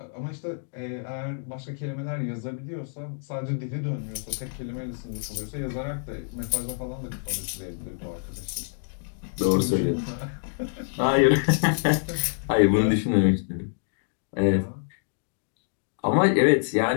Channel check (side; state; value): right; silent; digital silence